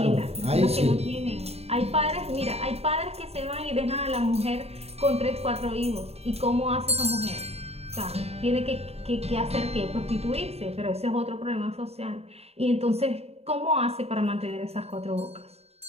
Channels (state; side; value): late; left; 0.30 ms